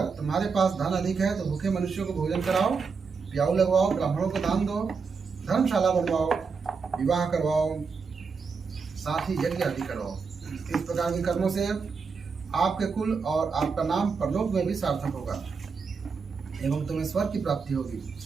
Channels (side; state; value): left; quieter; 5.2 dB